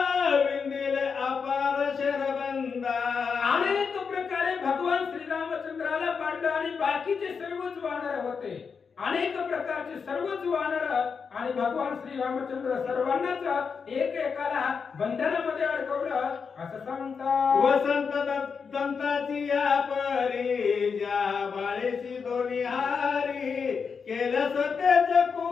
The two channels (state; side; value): quieter; right; 5.8 dB